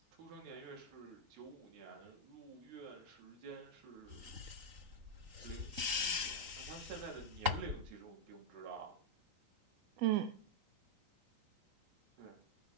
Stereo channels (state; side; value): late; left; 3.9 ms